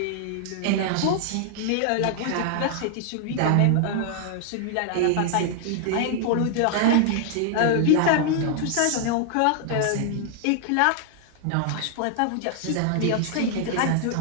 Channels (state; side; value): different; both; correlation 0.00